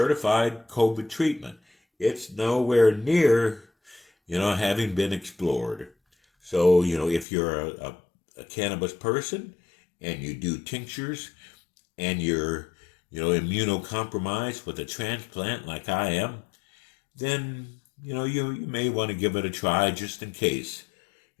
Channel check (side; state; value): right; drops out; at 7.2 s